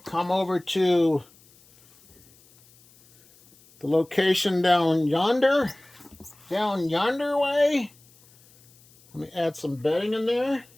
come over to the location down yonder way. Let me add some bedding in there.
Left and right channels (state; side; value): noise; left; hiss, 29 dB below the sound